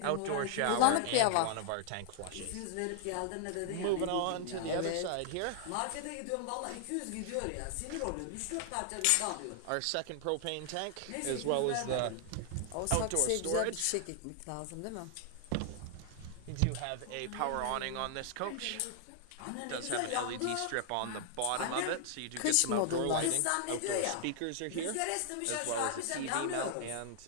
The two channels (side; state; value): both; different; correlation -0.01